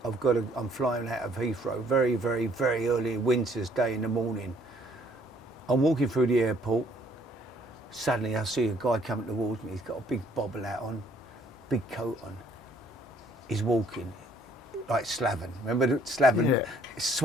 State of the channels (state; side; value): normal; both; correlation 0.62